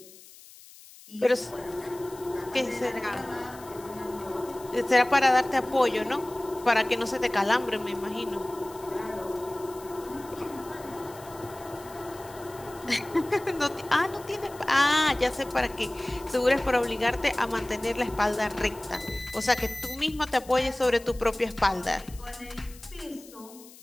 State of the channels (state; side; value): noise; left; hiss, 20 dB below the sound